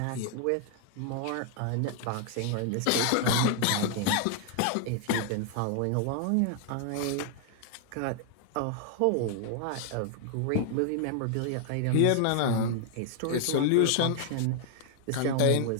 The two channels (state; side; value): different; both; correlation 0.00